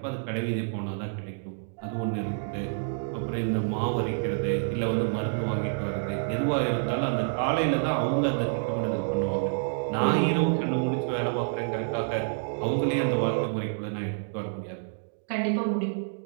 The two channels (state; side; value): silent; left; digital silence